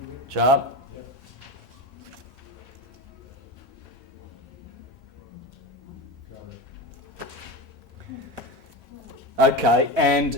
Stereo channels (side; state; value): both; normal; correlation 0.22